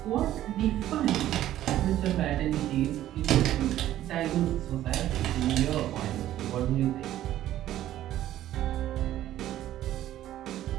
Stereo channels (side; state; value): left; quieter; 13.1 dB